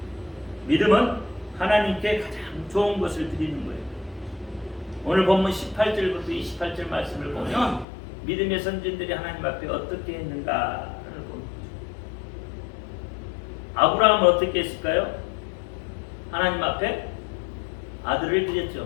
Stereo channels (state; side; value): drops out; right; at 7.9 s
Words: 믿음은 하나님께 가장 좋은 것을 드리는 거예요. 오늘 본문 18절부터 28절 말씀을 보면 믿음의 선진들이 하나님 앞에 어떻게 했는가를 봅니다. 아브라함은 어떻게 했을까요? 하나님 앞에 아들을